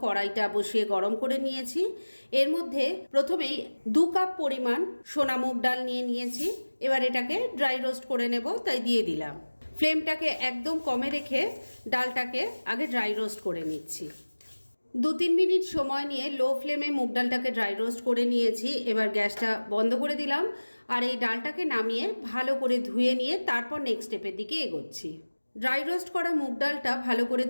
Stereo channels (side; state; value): both; inverted; correlation -1.00